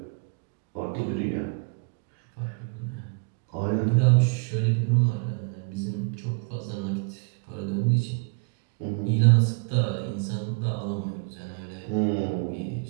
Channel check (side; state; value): left; quieter; 33.7 dB